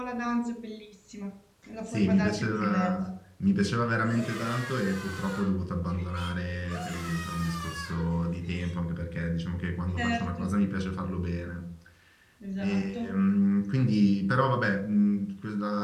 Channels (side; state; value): both; identical; correlation 1.00